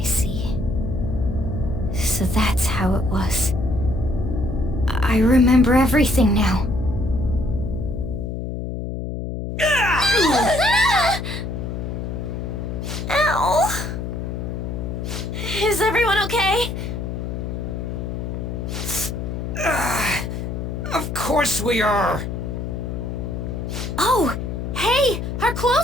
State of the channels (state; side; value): noise; left; hum, 5 dB below the sound